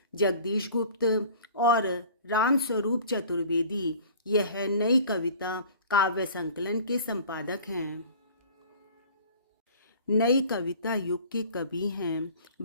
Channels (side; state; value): both; inverted; correlation -0.46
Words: जगदीश गुप्त और रामस्वरूप चतुर्वेदी यह नई कविता काव्य संकलन के संपादक हैं। नई कविता युग के कवि हैं